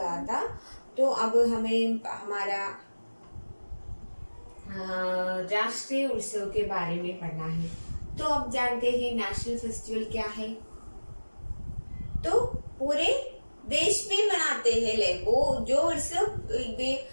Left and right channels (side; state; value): both; inverted; correlation -1.00